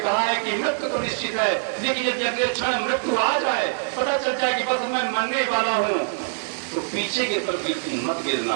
है कि मृत्यु तो निश्चित है, लेकिन यदि अगले क्षण मृत्यु आ जाए, पता चल जाए कि बस मैं मरने वाला हूँ, तो पीछे की तरफ मत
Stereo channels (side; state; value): left; silent; digital silence